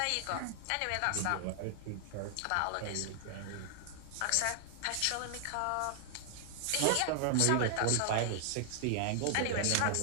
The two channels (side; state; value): both; different; correlation 0.00